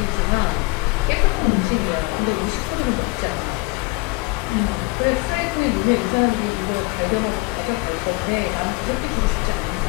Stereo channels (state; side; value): quieter; right; 25.2 dB